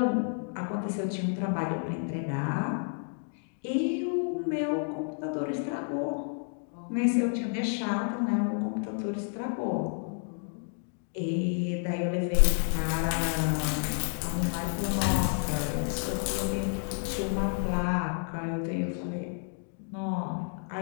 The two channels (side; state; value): right; silent; 56 dB below the other